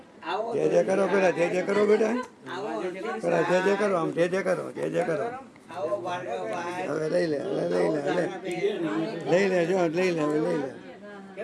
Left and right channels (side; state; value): both; identical; correlation 1.00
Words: જય જય કરો પેલા, જય જય કરો બેટા, પેલા જય જય કરો, આમ જય જય કરો, જય જય કરો. હવે લઈ લે, હવે લઈ લે, લઈ લે, જો લઈ લે, હવે લઈ લે.